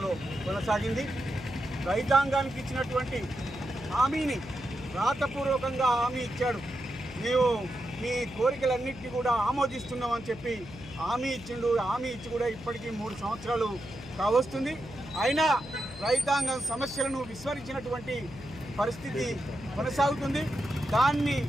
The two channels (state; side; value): noise; left; hum, 15 dB below the sound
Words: కొనసాగింది. రైతాంగానికి ఇచ్చినటువంటి హామీని రాతపూర్వకంగా హామీ ఇచ్చాడు. మేము మీ కోరికలన్నింటినీ కూడా ఆమోదిస్తున్నామని చెప్పి హామీ ఇచ్చిండు. హామీ ఇచ్చి కూడా ఇప్పటికీ 3 సంవత్సరాలు కావస్తుంది. అయినా రైతాంగం సమస్యలను విస్మరించినటువంటి పరిస్థితి కొనసాగుతుంది. దాన్ని